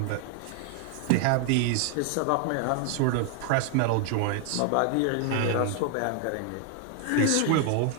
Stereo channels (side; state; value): both; different; correlation 0.01